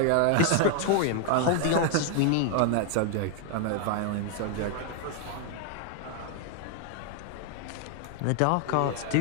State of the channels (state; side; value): different; both; correlation 0.00